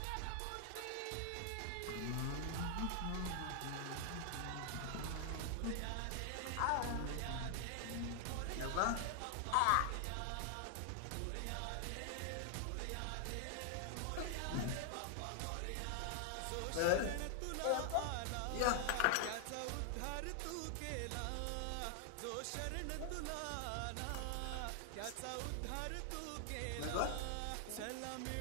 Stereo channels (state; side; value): different; both; correlation 0.00